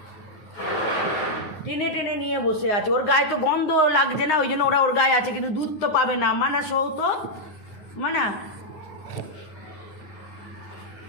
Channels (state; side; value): late; right; 9.7 ms